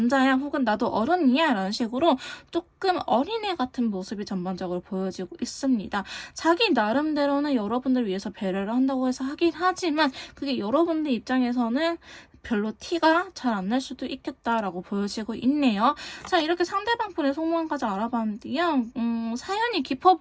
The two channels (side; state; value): both; identical; correlation 1.00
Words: 혹은 나도 어른이야 라는 식으로 조금 어린애 같은 모습이 전반적으로 보여지고 있습니다. 자기 나름대로는 여러분들 위해서 배려를 한다고 해서 하긴 하지만 그게 여러분들 입장에서는 별로 티가 잘 안 날 수도 있겠다라고 보여지고 있네요. 자, 이렇게 상대방 분의 속마음까지 알아봤는데요. 사연이 깊어